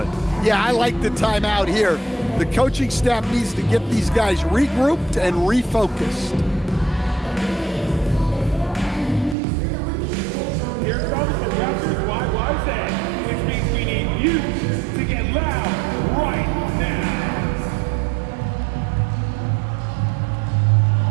Yeah, I like the timeout here. The coaching staff needs to get these guys regrouped and refocused. Here comes the Raptors YY Zen, which means we need you to get loud right now.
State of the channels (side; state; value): left; drops out; at 9.3 s